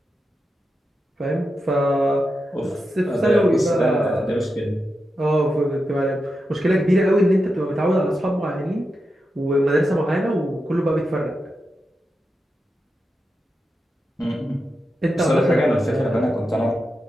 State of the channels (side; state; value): both; normal; correlation 0.88